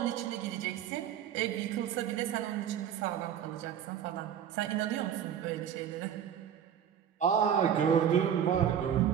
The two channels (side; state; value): left; quieter; 9.1 dB